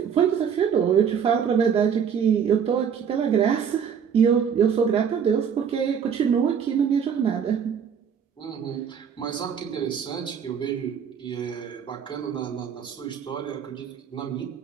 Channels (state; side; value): quieter; left; 7.5 dB